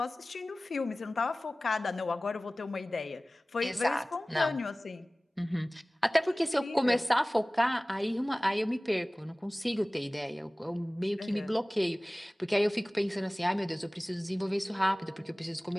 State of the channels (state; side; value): normal; both; correlation 0.98